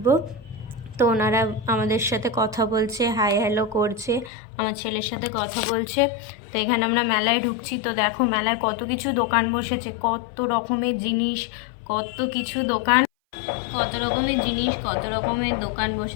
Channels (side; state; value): right; drops out; at 4.3 s